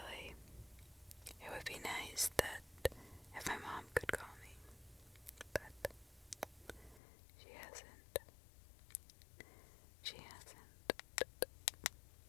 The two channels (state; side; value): drops out; right; at 7.0 s